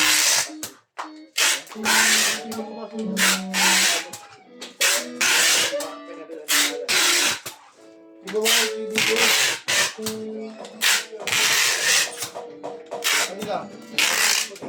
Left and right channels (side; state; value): both; identical; correlation 1.00